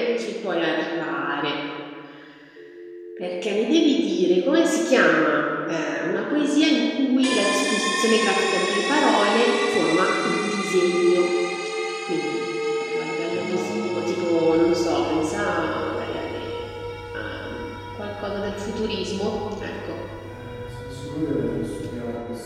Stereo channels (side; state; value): both; identical; correlation 1.00